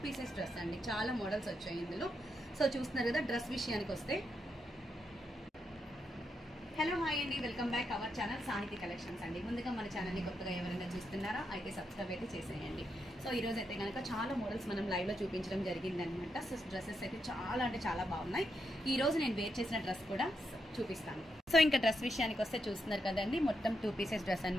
పీసెస్ డ్రెస్ అండి. చాలా మోడల్స్ వచ్చాయి ఇందులో. సో చూస్తున్నారు కదా, డ్రెస్ విషయానికి వస్తే హలో హాయ్ అండి, వెల్కమ్ బ్యాక్ అవర్ ఛానల్ సాహితీ కలెక్షన్స్ అండి. ముందుగా మన ఛానల్ని కొత్తగా ఎవరైనా చూస్తున్నారా అయితే సబ్స్క్రైబ్ అయితే చేసేయండి. సో ఈ రోజు అయితే కనుక చాలా మోడల్స్ మనం లైవ్లో చూపించడం జరిగిందనమాట. సో డ్రెస్సెస్ అయితే చాలా అంటే చాలా బాగున్నాయి. ఈ రోజు నేను వేర్ చేసిన డ్రెస్ కూడా చూపిస్తాను. సో ఇంకా డ్రెస్ విషయానికి వస్తే చూస్తున్నారు కదండి, మొత్తం 2 పీసెస్ డ్రెస్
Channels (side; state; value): both; normal; correlation 0.83